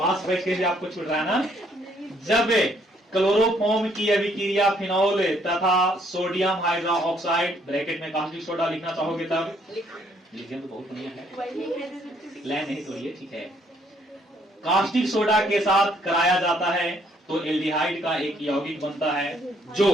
बैठ के आपको छूट रहा है ना। जब क्लोरोफॉर्म की अभिक्रिया फिनॉल तथा सोडियम हाइड्रा ऑक्साइड, ब्रैकेट में कास्टिक सोडा लिखना चाहोगे तब लिखिए, तो बहुत बढ़िया है, लाइन नहीं तोड़िए, ठीक है। कास्टिक सोडा के साथ कराया जाता है तो एल्डिहाइड का एक यौगिक बनता है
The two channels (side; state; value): both; normal; correlation 0.67